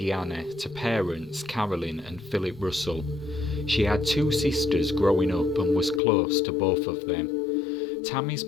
to parents Carolyn and Philip Russell. She had two sisters growing up and was close to both of them. Tammy's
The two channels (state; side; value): drops out; right; at 6.0 s